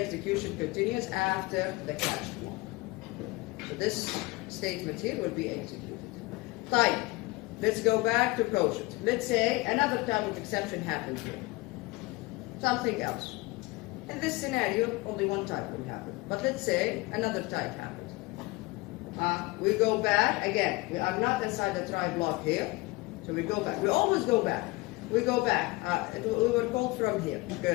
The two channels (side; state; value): right; quieter; 22.1 dB